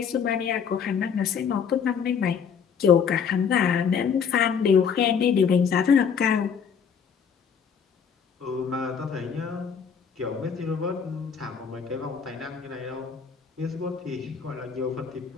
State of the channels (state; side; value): quieter; right; 6.8 dB